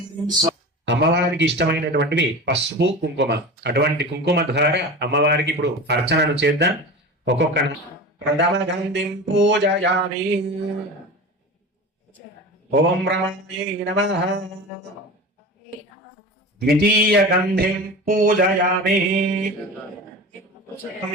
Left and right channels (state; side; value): normal; both; correlation 0.31